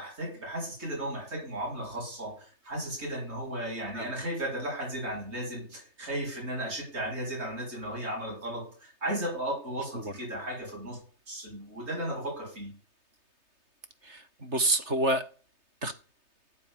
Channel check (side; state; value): left; late; 3.4 ms